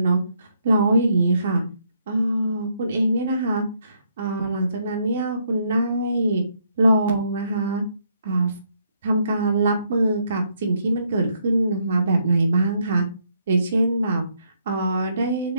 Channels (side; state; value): both; inverted; correlation -0.73